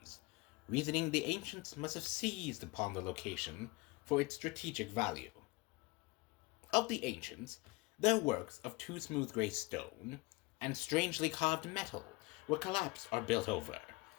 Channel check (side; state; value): right; quieter; 24.1 dB